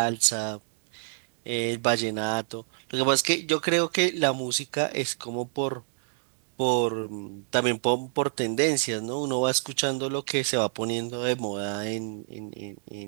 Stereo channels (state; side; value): silent; left; digital silence